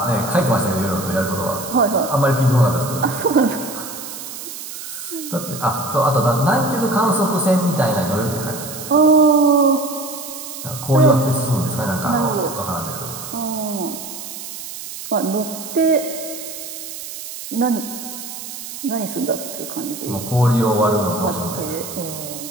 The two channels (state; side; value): noise; right; hiss, 10 dB below the sound